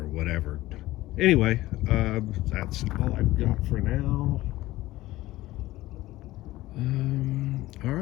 whatever. Anyway, that's all I've got for now. All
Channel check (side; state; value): right; quieter; 17.1 dB